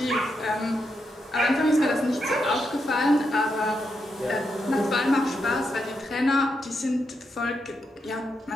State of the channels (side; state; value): both; normal; correlation 0.83